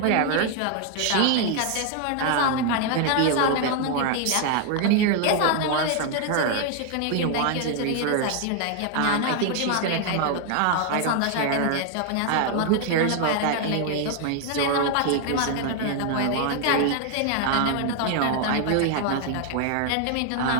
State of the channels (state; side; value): different; both; correlation 0.00